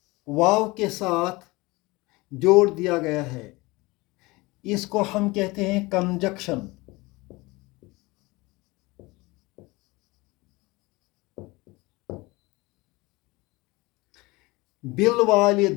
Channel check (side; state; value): right; quieter; 22.7 dB